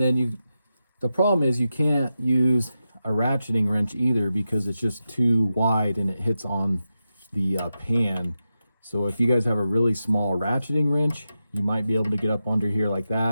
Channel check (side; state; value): both; inverted; correlation -0.90